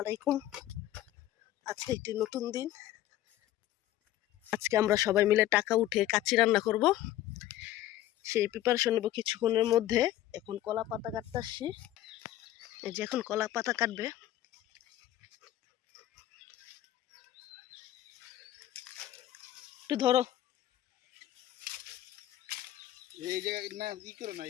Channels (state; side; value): quieter; right; 13.8 dB